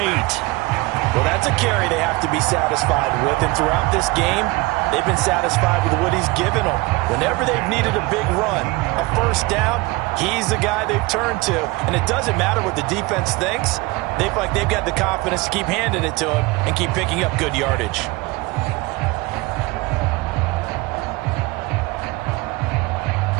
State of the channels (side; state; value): left; quieter; 22.9 dB